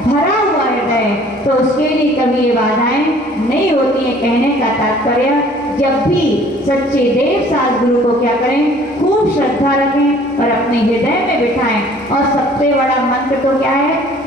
भरा हुआ हृदय। तो उसके लिए कभी ये बाधाएं नहीं होती है। कहने का तात्पर्य, जब भी सच्चे देव साध गुरु को क्या करें, खूब श्रद्धा रखें और अपने हृदय में बिठाएं। और सबसे बड़ा मंत्र तो क्या है,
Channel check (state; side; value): normal; both; correlation 0.54